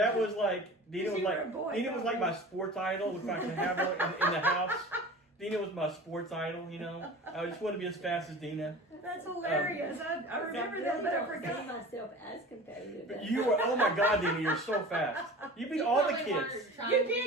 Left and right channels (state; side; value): normal; both; correlation 0.38